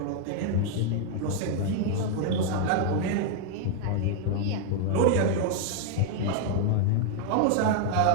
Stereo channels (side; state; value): both; different; correlation 0.00